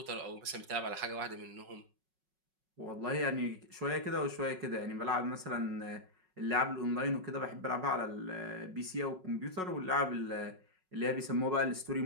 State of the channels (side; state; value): left; late; 5.4 ms